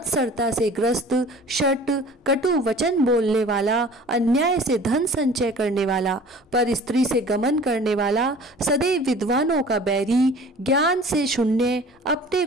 से ग्रस्त शट कटु वचन बोलने वाला अन्याय से धन संचय करने वाला पर स्त्री से गमन करने वाला सदैव विद्वानों का बैरी ज्ञान से शून्य अपने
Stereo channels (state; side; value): normal; both; correlation 0.46